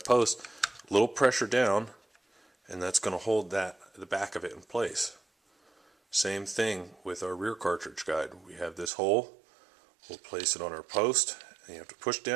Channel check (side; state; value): left; drops out; at 8.9 s